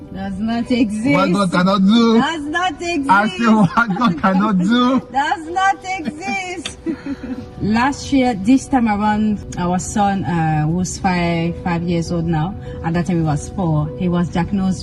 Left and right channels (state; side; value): identical; both; correlation 1.00